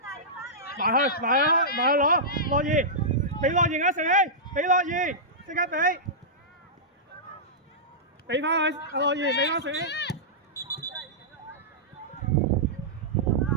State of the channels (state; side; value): normal; both; correlation -0.15